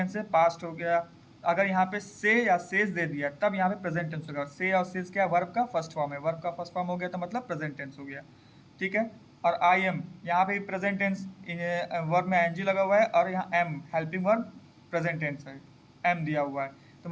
है, पास्ट हो गया, अगर यहाँ पे से या सेज दे दिया तब यहाँ पे प्रेजेंट टेंस होगा। से और सेज क्या है, वर्ब का फर्स्ट फॉर्म है, वर्ब का फर्स्ट फॉर्म हो गया तो मतलब प्रेजेंट टेंस हो गया, ठीक है। और आई एम यहाँ पे प्रेजेंट टेंस, वर्ब में एनजी लगा हुआ है और यहाँ am helping verb present tense है, एम दिया हुआ है, तो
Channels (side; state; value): both; identical; correlation 1.00